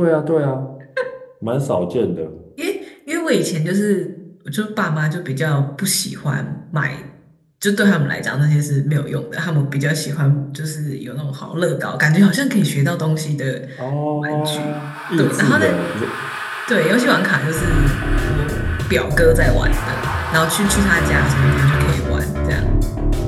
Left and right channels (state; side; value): identical; both; correlation 1.00